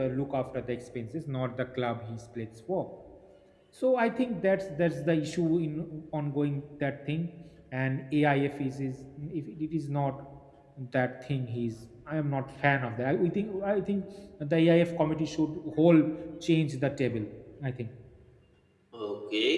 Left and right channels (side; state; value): both; identical; correlation 1.00